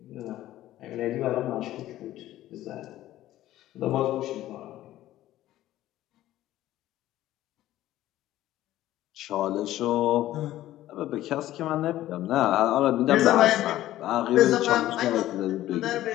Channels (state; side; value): quieter; right; 14.3 dB